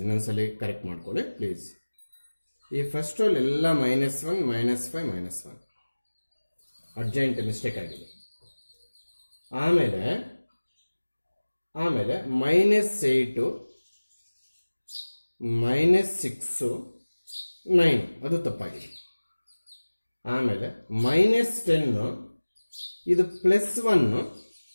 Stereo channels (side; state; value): both; inverted; correlation -1.00